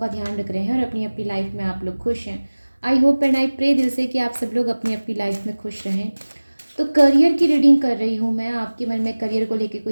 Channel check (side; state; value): both; inverted; correlation -1.00